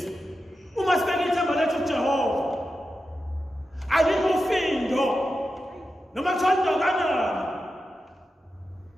uma sibeke ithemba lethu kuJehova, alikho findo noma kuthiwa kanani,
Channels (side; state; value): both; normal; correlation 0.90